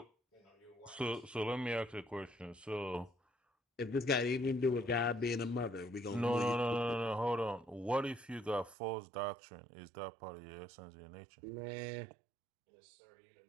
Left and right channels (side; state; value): left; drops out; at 8.8 s